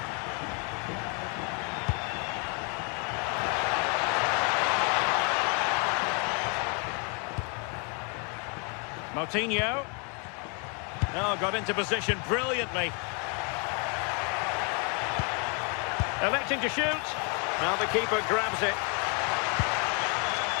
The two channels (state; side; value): quieter; right; 36.2 dB